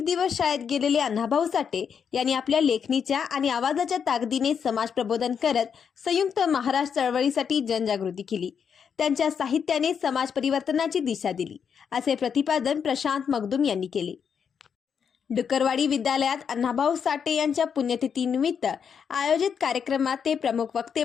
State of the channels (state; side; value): quieter; right; 7.1 dB